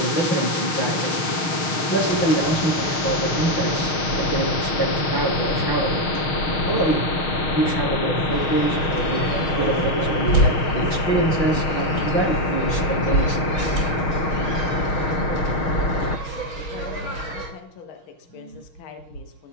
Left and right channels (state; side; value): late; right; 6.3 ms